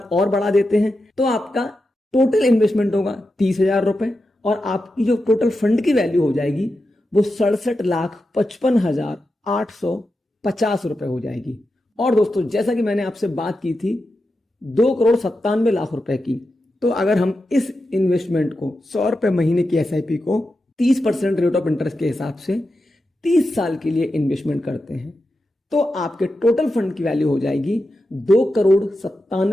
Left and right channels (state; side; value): normal; both; correlation 0.89